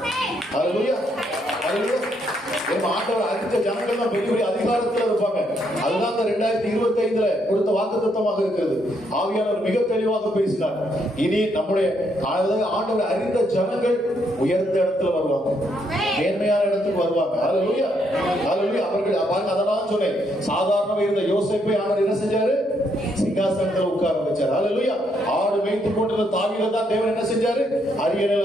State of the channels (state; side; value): normal; both; correlation 0.74